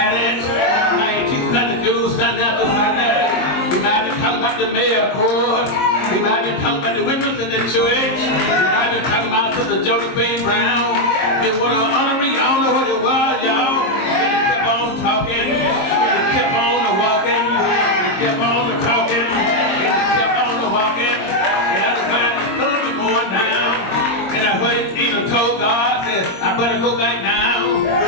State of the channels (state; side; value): late; right; 22 ms